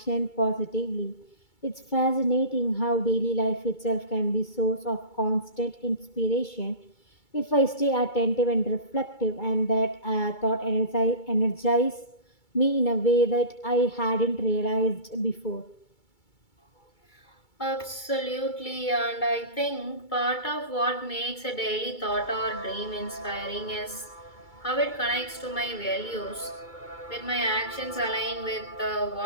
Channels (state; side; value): late; right; 2.3 ms